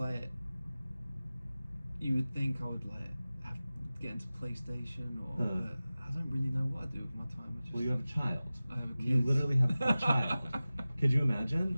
you would think I would have to get into PlayStation or but I don't really know what I do with my time. I just, Well, you have a child. I have a kid. You literally have a child. Could you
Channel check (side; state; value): both; inverted; correlation -0.97